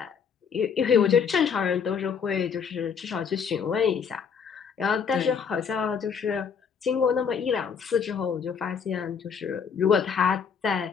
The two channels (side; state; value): right; quieter; 6.6 dB